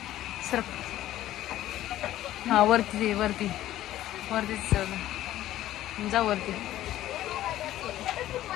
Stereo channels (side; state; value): right; quieter; 13.8 dB